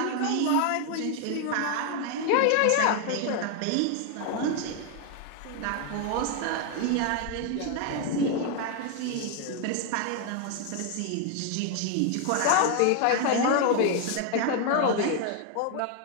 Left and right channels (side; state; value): both; different; correlation 0.01